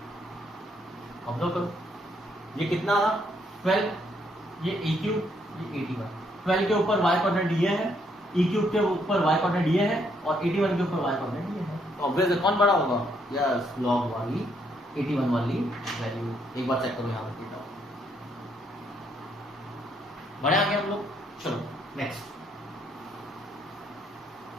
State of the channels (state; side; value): normal; both; correlation 0.72